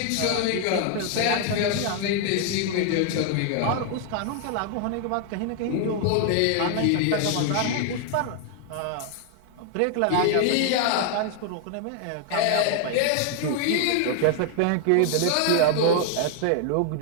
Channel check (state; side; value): different; both; correlation 0.00